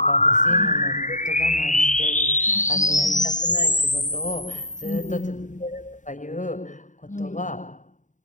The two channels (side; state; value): right; late; 0.36 ms